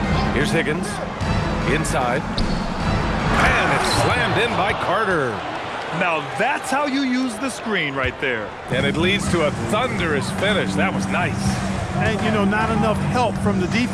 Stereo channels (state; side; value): identical; both; correlation 1.00